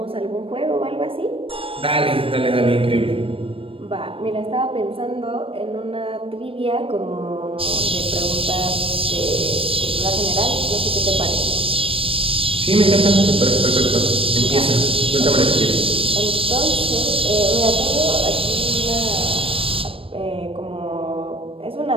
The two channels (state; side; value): late; left; 0.26 ms